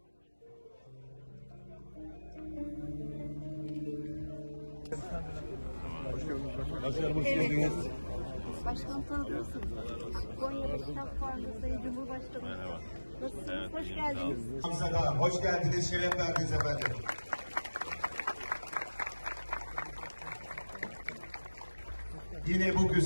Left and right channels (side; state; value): both; inverted; correlation -1.00